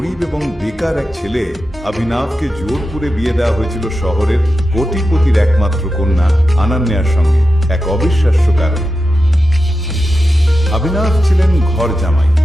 এবং বেকার এক ছেলে অভিনবকে জোরপুরে বিয়ে দেওয়া হয়েছিল শহরের কোটিপতির একমাত্র কন্যা অনন্যার সঙ্গে এক অবিশ্বাস্য কারণে। অভিনব ছিলেন ঘর জামাই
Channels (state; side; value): normal; both; correlation 0.91